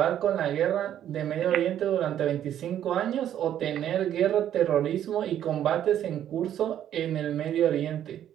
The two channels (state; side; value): quieter; left; 10.8 dB